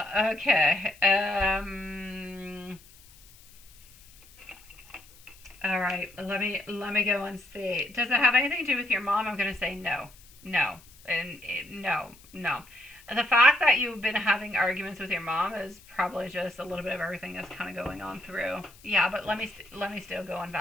Okay. All right. Let me go and see. Does it have anything to do with your mom? I'm gonna say no, no, and no, no. The fact that you've been having arguments with your mom is probably just a little bit of everything that's kind of going on through. Yeah, but let me still go and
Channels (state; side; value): noise; left; hiss, 24 dB below the sound